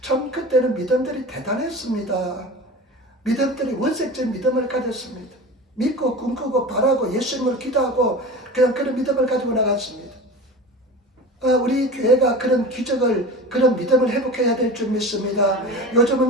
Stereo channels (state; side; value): normal; both; correlation 0.33